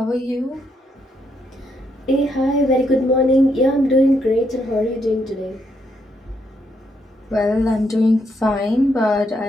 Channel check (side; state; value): both; normal; correlation 0.76